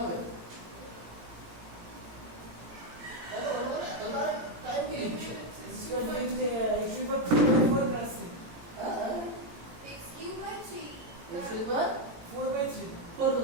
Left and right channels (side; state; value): left; late; 17 ms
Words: হবে? টাইম কি লিখছো? इसका लिखते हैं x की power 4 plus 3 x cube by 3 x square 4 by 3 4